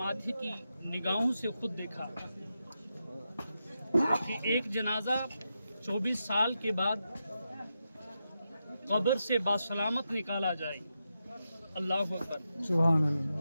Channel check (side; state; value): both; inverted; correlation -0.87